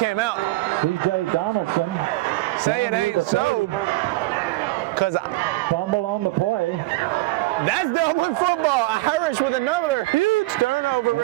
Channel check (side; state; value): left; quieter; 19.7 dB